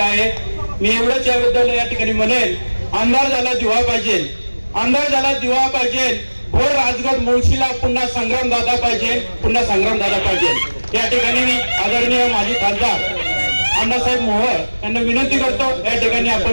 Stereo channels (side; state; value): both; inverted; correlation -1.00